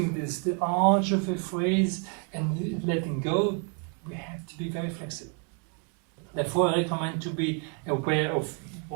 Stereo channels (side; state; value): left; quieter; 38.4 dB